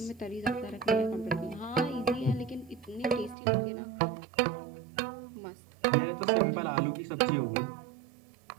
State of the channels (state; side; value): drops out; left; at 3.4 s